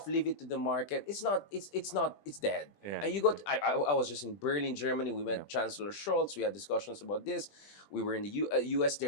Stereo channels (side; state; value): right; late; 20 ms